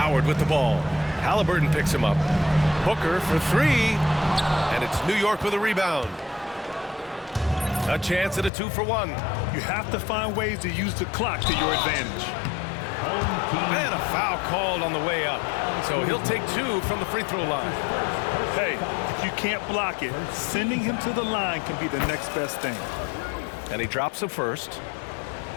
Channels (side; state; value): right; drops out; at 8.5 s